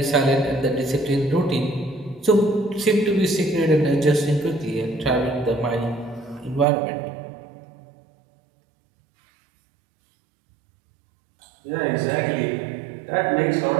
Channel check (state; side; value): drops out; left; at 6.7 s